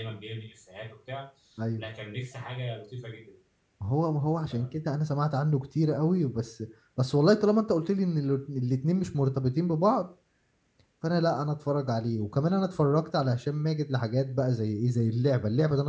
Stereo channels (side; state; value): both; identical; correlation 1.00